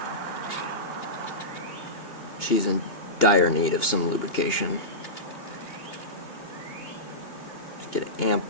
She's in dire need of some lubrication. Just get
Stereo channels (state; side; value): late; right; 2.9 ms